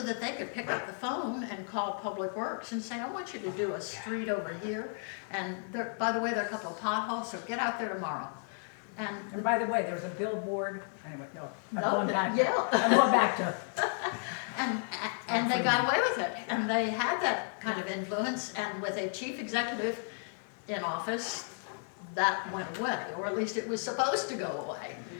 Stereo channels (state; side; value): silent; right; 56 dB below the other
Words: that they could pick up the phone and call Public Works and say, I want you to do a street over here, and there, by the way, there are a couple of potholes, so get out there tomorrow. And by the way, there's a billboard, anyway, no, I'm No, going back. yeah. I'm going back to, And they got away with it, and they had that kind of influence, and with a chief executive in office, that went away, or at least it was supposed to go away.